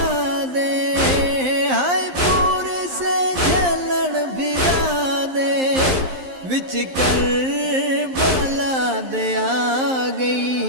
دے، ہائے پور سے جلن بھرا دے، وچ کربلا دے آ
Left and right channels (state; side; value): late; left; 11 ms